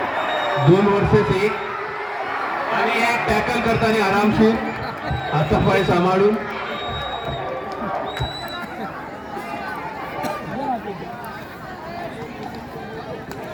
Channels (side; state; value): both; identical; correlation 1.00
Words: दोन वर्सेस 1 आणि एक टॅकल करताना आरामशीर हातापाय सांभाळून.